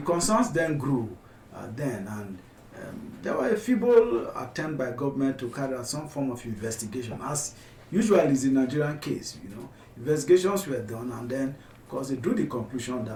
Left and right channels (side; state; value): both; identical; correlation 1.00